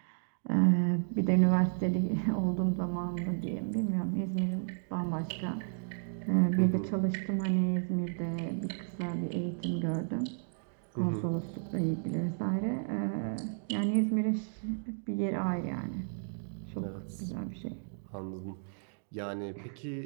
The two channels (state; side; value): silent; left; digital silence